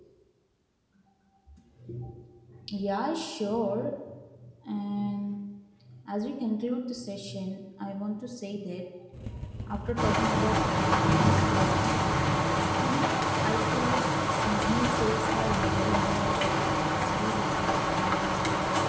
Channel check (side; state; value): both; identical; correlation 1.00